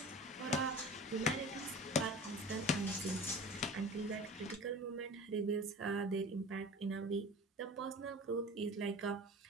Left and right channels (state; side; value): normal; both; correlation 0.38